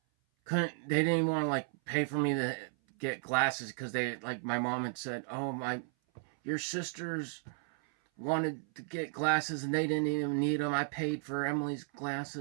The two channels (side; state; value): left; silent; 55 dB below the other